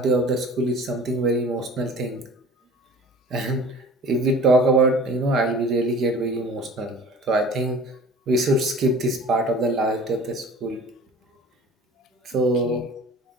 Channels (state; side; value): normal; both; correlation 0.43